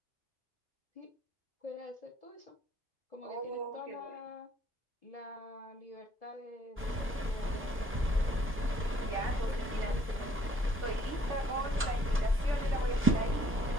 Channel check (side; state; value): both; normal; correlation 0.62